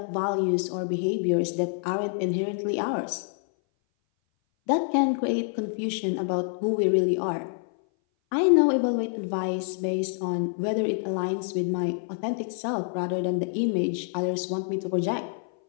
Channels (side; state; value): right; silent; 58 dB below the other